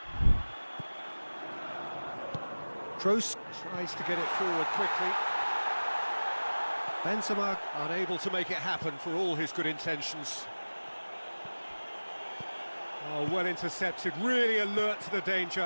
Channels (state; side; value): inverted; both; correlation -1.00